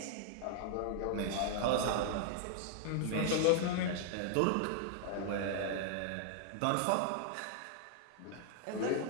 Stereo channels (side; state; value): both; different; correlation 0.00